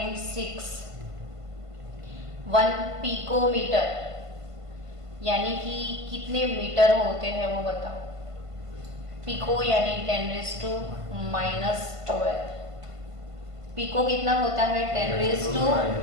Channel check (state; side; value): late; left; 1.5 ms